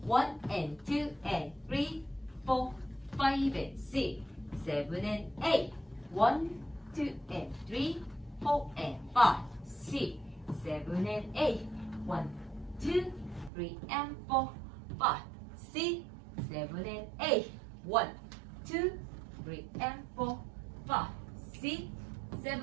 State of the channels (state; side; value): drops out; left; at 13.5 s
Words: 1 and 2 and 3, 4, 5 and 6, 7 and 8. 1, 2 and 3, 4 and 5, 6, 7 and 8. 1, 2, 3 and 4, 5, 6, 7 and 8. 1, 2, 3 and 4, 5, 6,